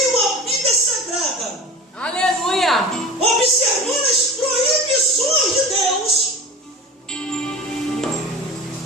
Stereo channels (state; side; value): normal; both; correlation 0.35